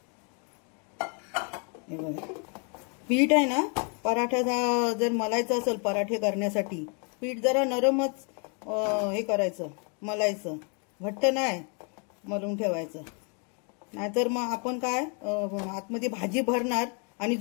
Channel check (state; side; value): quieter; right; 37.7 dB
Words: हे बघा, पीठ आहे ना, पराठ्याचा जर मलायचं असेल पराठे करण्यासाठी पीठ जरा नरमच हे करायचं, मलायचं, घट्ट नाही मलून ठेवायचं. नाहीतर मग आपण काय आतमध्ये भाजी भरणार आणि